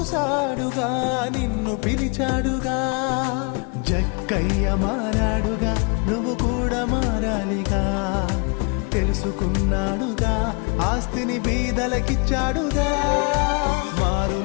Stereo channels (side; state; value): right; quieter; 32.9 dB